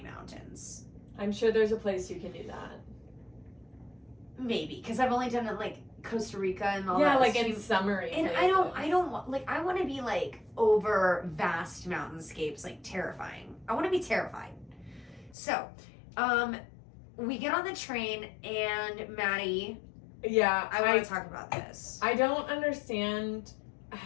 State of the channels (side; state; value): right; drops out; at 15.4 s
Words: mountains. I'm sure there's a place you can do that. maybe because I've only done it like Costa Rica and all that. Yeah, like in extreme- summary. And I don't want like I want to be like over vast mountainscapes, like terrifying. I want to be terrified. So, we get on the train and Maddie, Yeah, I want to talk about this. I don't understand